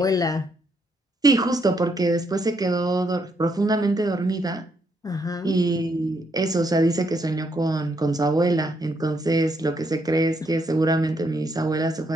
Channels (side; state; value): both; normal; correlation 0.75